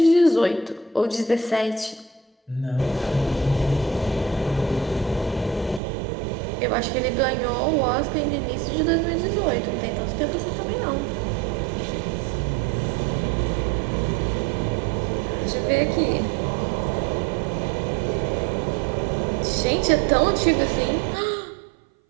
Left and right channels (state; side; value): drops out; left; at 5.8 s